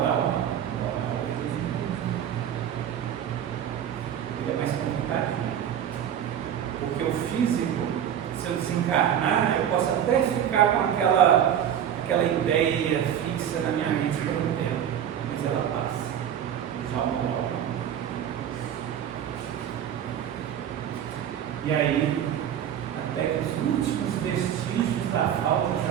não. Ele é mais complicado. Porque o físico, se eu desencarnar, eu posso até ficar com aquela ideia fixa na minha mente por um tempo, mas ela passa. Já o moral não. E aí, até que os últimos vestígios da falta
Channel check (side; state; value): left; quieter; 9.7 dB